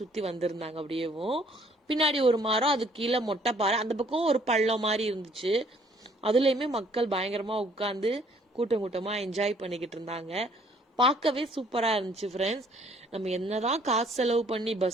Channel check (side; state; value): both; normal; correlation 0.61